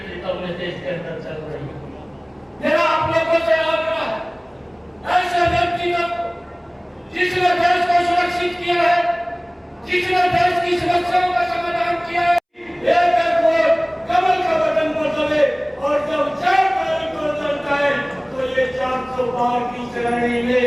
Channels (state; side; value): identical; both; correlation 1.00